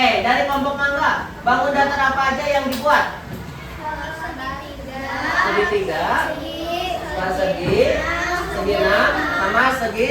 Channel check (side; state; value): both; identical; correlation 1.00